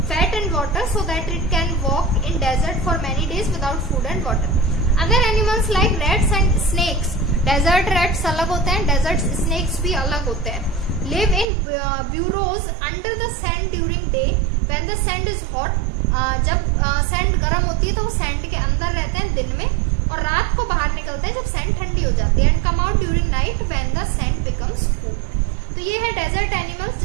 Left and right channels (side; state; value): left; drops out; at 11.5 s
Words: fat and water so that it can walk in desert for many days without food and water. Other animals like rats and snakes, desert rats अलग होते हैं, desert snakes भी अलग होते हैं, live in burrows under the sand during day when the sand is hot. जब sand गर्म होती है तो वो सैंड के अंदर रहते हैं दिन में, और रात को बाहर निकलते हैं जब सैंड ठंडी हो जाती है, and come out during night when the sand becomes cool. तो ये है डेजर्ट एनिमल्स,